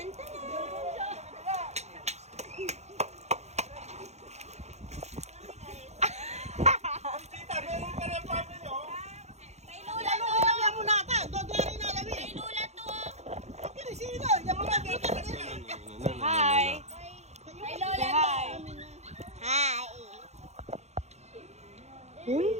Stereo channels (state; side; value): late; left; 0.32 ms